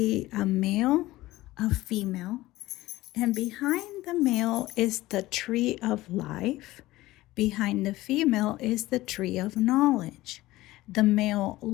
a male, a female, and behind the male is the tree of life. Behind the female is the tree of knowledge. The male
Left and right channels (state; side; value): quieter; right; 17.6 dB